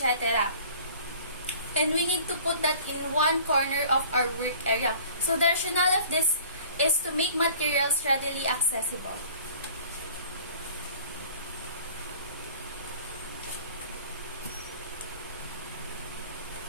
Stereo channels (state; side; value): inverted; both; correlation -0.49